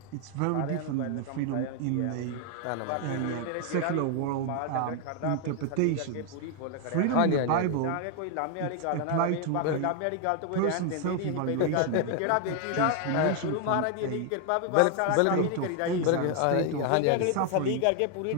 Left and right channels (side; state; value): both; different; correlation 0.00